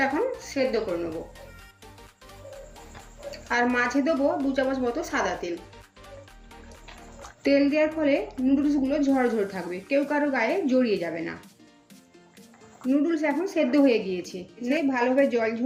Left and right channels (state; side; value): identical; both; correlation 1.00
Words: এখন সেদ্ধ করে নেব। আর মাঝে দেবো 2 চামচ মতো সাদা তেল। তেল দেওয়ার ফলে নুডলসগুলো ঝরঝর থাকবে, কেউ কারো গায়ে জড়িয়ে যাবে না। নুডলস এখন সেদ্ধ হয়ে গিয়েছে। ভালোভাবে জল